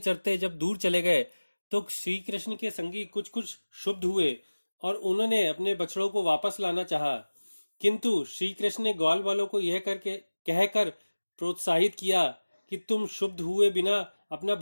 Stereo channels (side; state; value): both; inverted; correlation -1.00